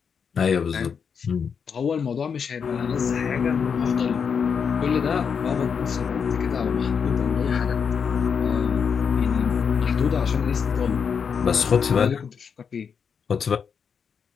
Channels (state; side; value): quieter; right; 6.5 dB